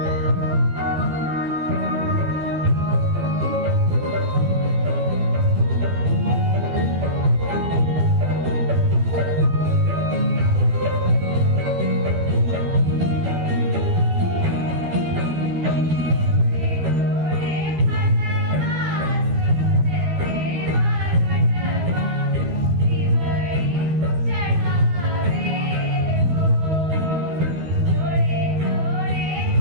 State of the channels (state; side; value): late; left; 12 ms